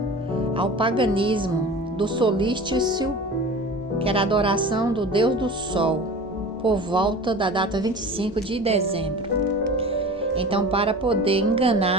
ao paganismo do solstício, que era a adoração do Deus do Sol, por volta da data 25 de dezembro. Então, para poder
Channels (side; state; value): both; normal; correlation 0.37